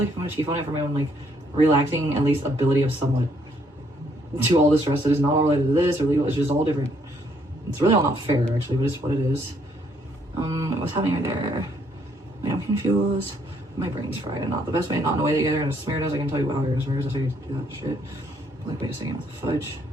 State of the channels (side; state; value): both; normal; correlation 0.69